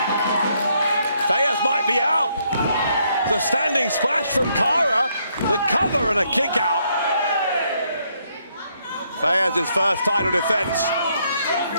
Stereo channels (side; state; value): both; inverted; correlation -0.73